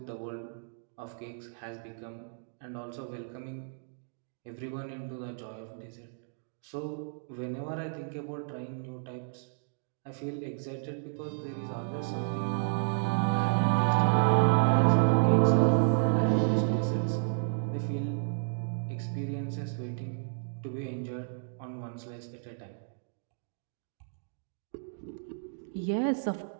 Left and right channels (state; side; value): silent; left; digital silence